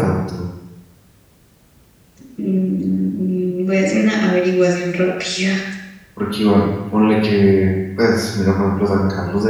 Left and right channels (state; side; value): identical; both; correlation 1.00